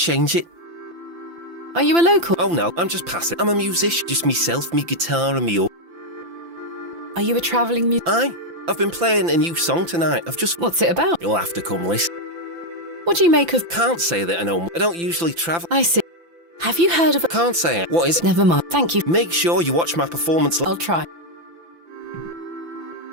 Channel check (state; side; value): late; left; 5.9 ms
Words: it. Are you a local? Oh no, I'm just passing. I'm a musician. Just myself, me guitar and me... Are you a travelling musician? Aye. I've been playing a new song tonight. What's it about? You'll have to come listen. What do you make of... Can't say that I know. I don't usually travel. I see. Have you heard of... Can't say it. What is it? Never mind. Thank you. Make sure you watch my performance. I'll try.